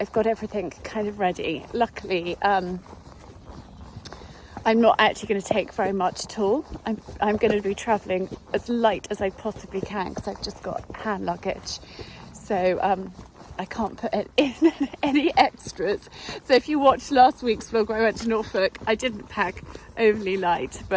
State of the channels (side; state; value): both; identical; correlation 1.00